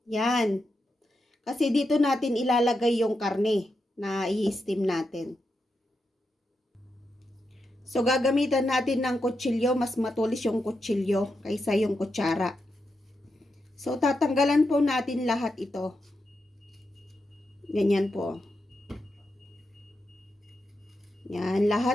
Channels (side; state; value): both; normal; correlation 0.86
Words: Yan. Kasi dito natin ilalagay yung karne na i-steam natin. So, gagamitan natin ng kutsilyo. Mas matulis yung kutsilyo kaysa yung kutsara. So, tatanggalan po natin lahat ito. Ganyan po. Yan.